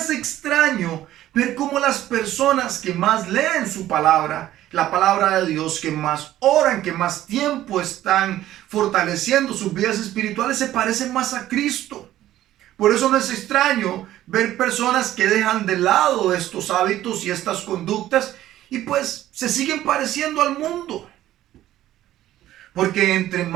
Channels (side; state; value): left; quieter; 13.6 dB